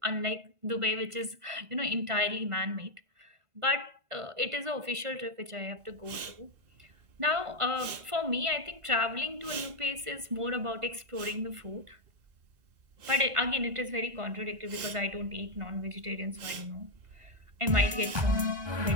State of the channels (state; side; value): late; left; 1.5 ms